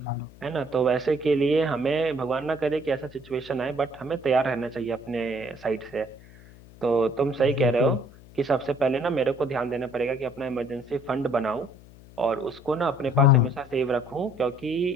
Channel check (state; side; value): noise; left; hum, 21 dB below the sound